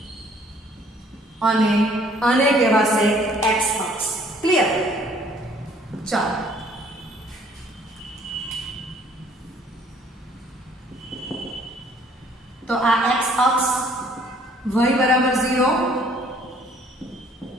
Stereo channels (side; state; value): both; normal; correlation 0.59